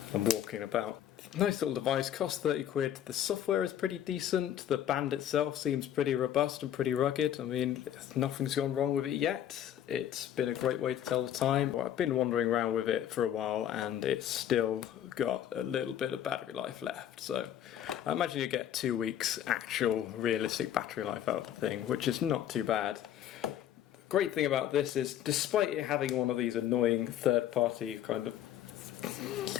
and walking about. Nice little device, costs 30 quid. The software is pretty decent. The band itself seems pretty robust and pretty rugged. I mean, nothing's gone wrong with it yet. It's been a great way to tell the time. Well, I've been wandering around with it for a while and it's still got a little bit of battery life left. So I imagine you get 2 weeks actual realistic battery life out of the thing, which is not too bad. Great thing about this is, despite it having one of these annoying third-party kind of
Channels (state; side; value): quieter; right; 10.7 dB